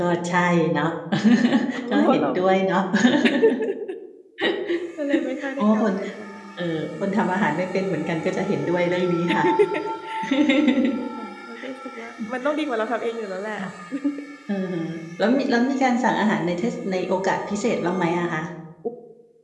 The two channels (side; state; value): both; identical; correlation 1.00